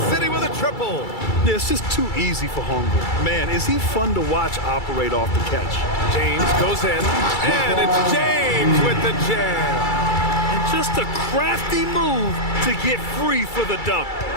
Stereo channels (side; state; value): right; late; 2.3 ms